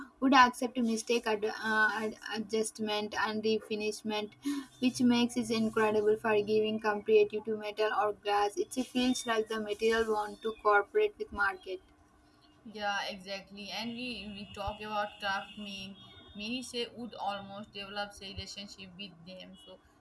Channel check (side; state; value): both; identical; correlation 1.00